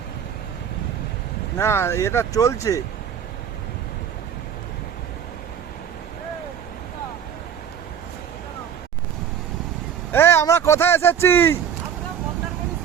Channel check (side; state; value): left; quieter; 8.3 dB